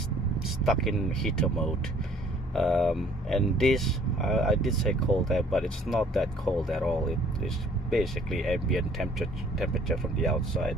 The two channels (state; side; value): normal; both; correlation 0.57